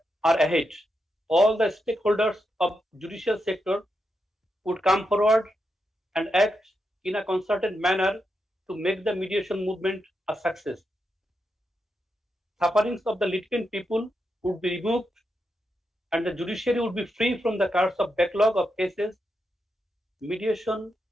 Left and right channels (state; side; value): normal; both; correlation 0.85